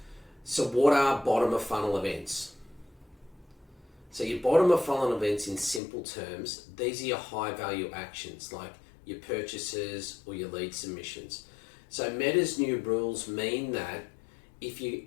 So what are bottom of funnel events? So your bottom of funnel events, in simple terms, these are your high value actions like your purchases or your lead submissions. So Meta's new rules mean that if you're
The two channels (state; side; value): drops out; right; at 5.8 s